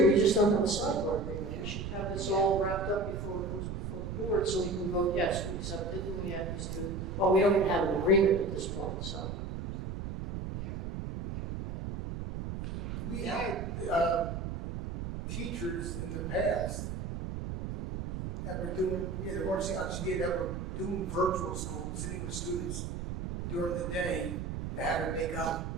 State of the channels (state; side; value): noise; right; rumble, 4 dB below the sound